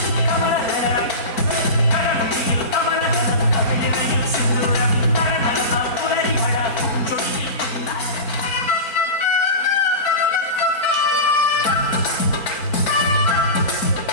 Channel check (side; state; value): right; late; 4.4 ms